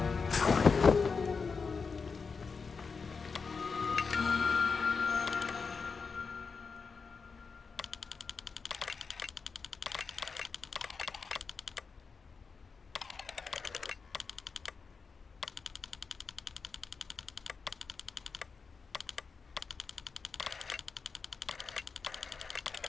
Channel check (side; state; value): right; quieter; 5.0 dB